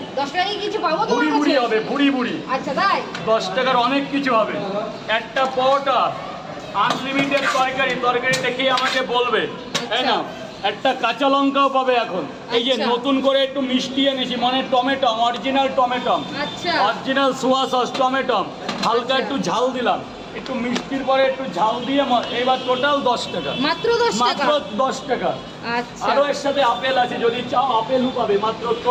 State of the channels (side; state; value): both; identical; correlation 1.00